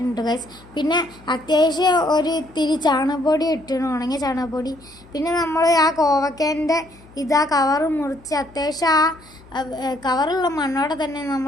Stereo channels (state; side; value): noise; left; hum, 24 dB below the sound